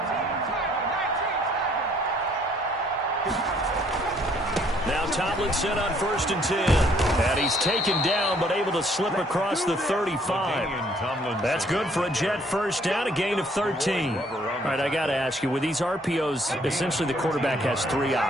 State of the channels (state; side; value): normal; both; correlation 0.63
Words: Now Tomlinson on 1st and 10. And he's taken down, but able to slip across the 35. That's good for a Jet first down, a gain of 13. All right, I got to ask you, with these RPOs, essentially the quarterback has 3